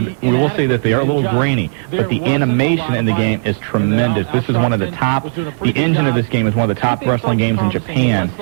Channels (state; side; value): silent; left; digital silence